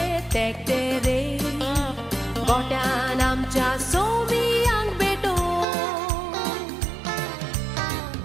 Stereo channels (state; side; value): drops out; left; at 5.7 s